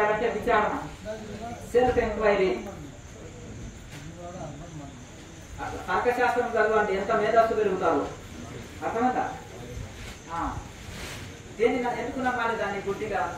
విచారణ, సెల్ఫ్ ఎంక్వైరీ. తర్కశాస్త్రం చదవండి, ఎంత మేధస్సు పెరుగుతారు. అర్థమంతా దేన్ని ఎందుకు నమ్మాలి, దాన్ని గుడ్డిగా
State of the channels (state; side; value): identical; both; correlation 1.00